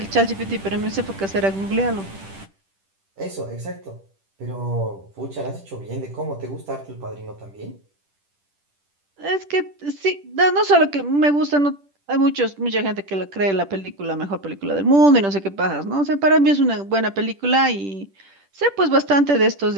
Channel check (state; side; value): late; left; 10 ms